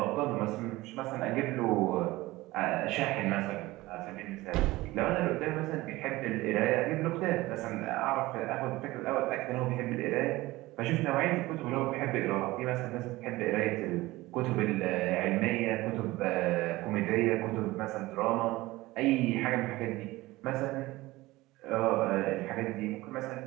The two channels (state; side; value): quieter; left; 19.2 dB